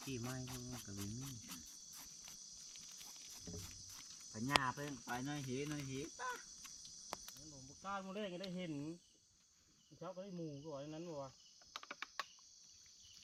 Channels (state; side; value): identical; both; correlation 1.00